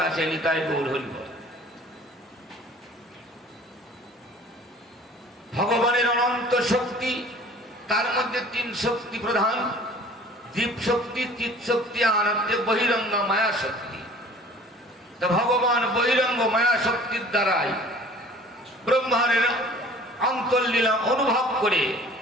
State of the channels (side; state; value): both; normal; correlation 0.48